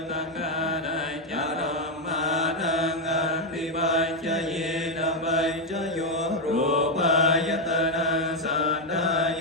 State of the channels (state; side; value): normal; both; correlation 0.03